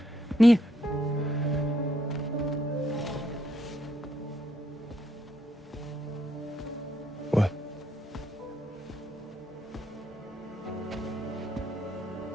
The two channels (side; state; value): both; normal; correlation 0.75